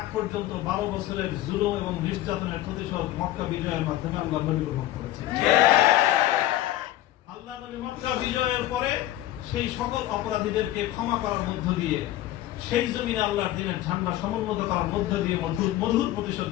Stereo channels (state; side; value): quieter; right; 14.4 dB